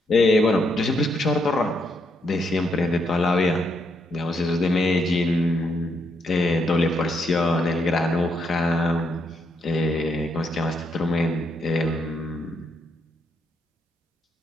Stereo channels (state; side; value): normal; both; correlation 0.77